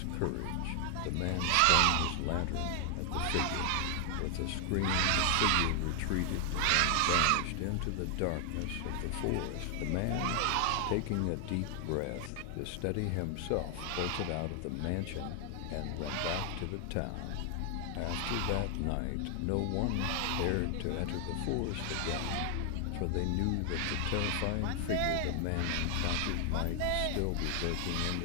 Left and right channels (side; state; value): both; different; correlation 0.00